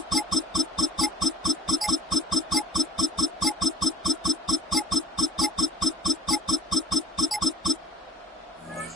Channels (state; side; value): normal; both; correlation 0.55